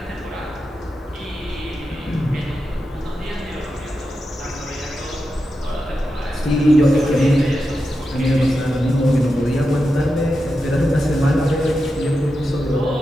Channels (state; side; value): normal; both; correlation 0.89